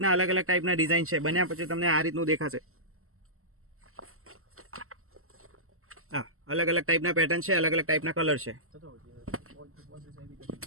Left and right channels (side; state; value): left; late; 0.62 ms